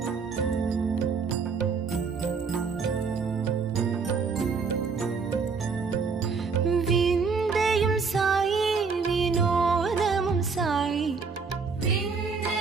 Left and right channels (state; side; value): quieter; left; 5.2 dB